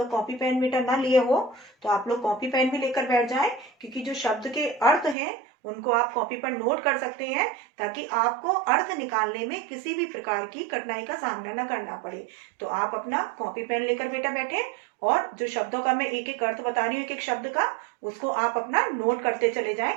कॉपी पेन मीटर ना लिए हो तो आप लोग कॉपी पेन भी लेकर बैठ जाएं, क्योंकि जो शब्द के अर्थ हैं उनको आप कॉपी पर नोट कर सकते हैं, ताकि आपको अर्थ निकालने में किसी भी प्रकार की कठिनाई का सामना न करना पड़े। तो आप अपना कॉपी पेन लेकर बेटा बैठे, और जो शब्दों का मैं एक एक अर्थ बता रही हूँ, एक एक शब्द का, उसको आप अपना नोट करते चले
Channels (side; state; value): left; drops out; at 5.2 s